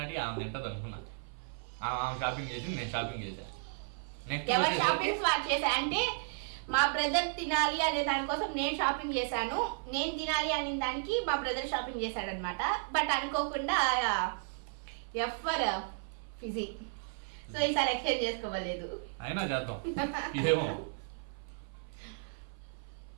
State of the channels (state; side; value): silent; left; 55 dB below the other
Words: ఆమె తింటది అనుకున్నా. ఆమె షాపింగ్ చేసి నేను షాపింగ్ చేశా. ఎవరు షాపింగ్ చేశా అంటే మా బ్రదర్ తినాలి అనే దానికోసం నేను షాపింగ్ చేశాను. నేను తినాలి అనే దానికి మా బ్రదర్ షాపింగ్ చేశాడు అనమాట. బట్ అనుకోకుండా ఎఫర్ ఫిజీ. సో ఈసారి ఎక్స్చేంజ్ చేసుకోవలేదు, అయినా చేద్దాం. ఏమో